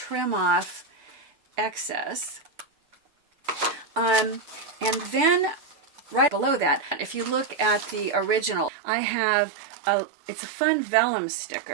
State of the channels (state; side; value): drops out; left; at 8.7 s